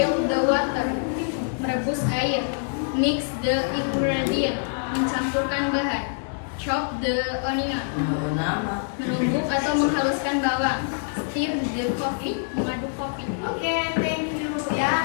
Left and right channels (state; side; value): silent; right; digital silence